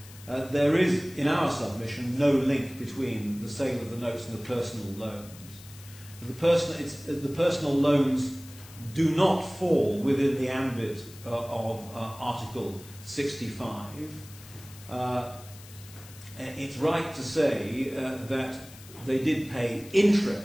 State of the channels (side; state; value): left; noise; hiss, 19 dB below the sound